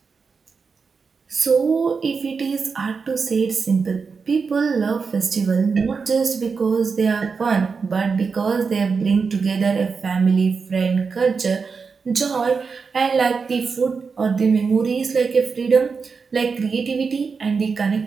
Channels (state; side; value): quieter; left; 5.2 dB